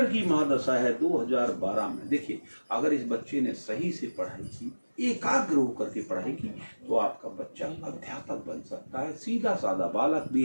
की महादशा है 2012 में। देखिए अगर इस बच्चे ने सही से पढ़ाई की, एकाग्र होकर के पढ़ाई की, तो आपका बच्चा अध्यापक बन सकता है। सीधा साधा बालक भी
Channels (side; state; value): both; inverted; correlation -1.00